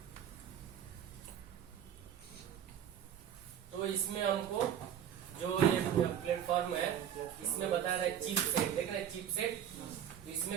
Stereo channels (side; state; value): left; quieter; 9.5 dB